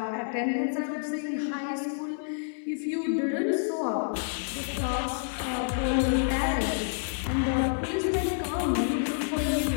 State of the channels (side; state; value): right; silent; 59 dB below the other